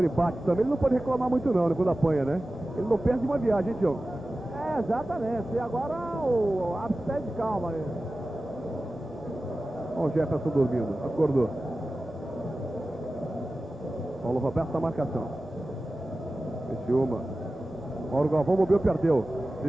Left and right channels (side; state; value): both; normal; correlation 0.95